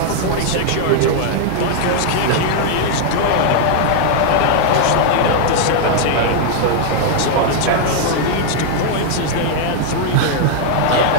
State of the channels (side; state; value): both; different; correlation 0.00